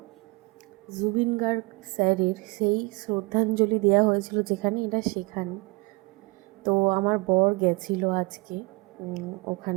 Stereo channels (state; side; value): quieter; left; 25.8 dB